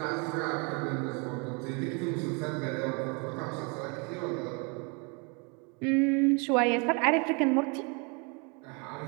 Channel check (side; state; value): left; quieter; 32.8 dB